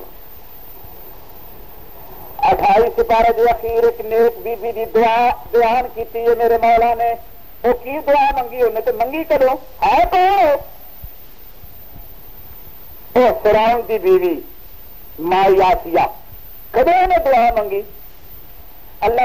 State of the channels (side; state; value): both; identical; correlation 1.00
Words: 28 سپارے دے اخیر ایک نیک بیبی کی دعا بیان کی ہے میرے مولا نے. وہ کی دعا منگی انہیں تو منگی کرو ہے تو فرعون کی بیوی مائی آسیہ کدے نے دعا منگی.